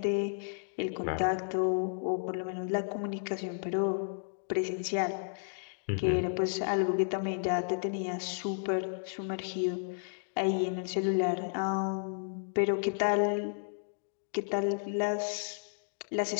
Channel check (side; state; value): right; silent; digital silence